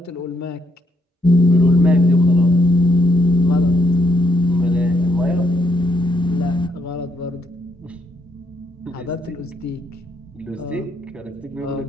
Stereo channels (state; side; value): normal; both; correlation 0.75